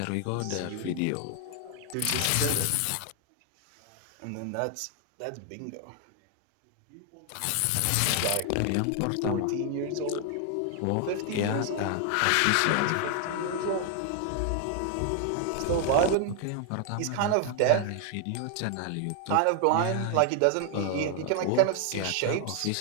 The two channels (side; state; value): both; different; correlation 0.00